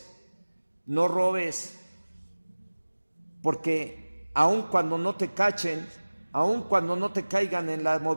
porque aun cuando no te cachen, aun cuando no te caigan en la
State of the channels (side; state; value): both; inverted; correlation -1.00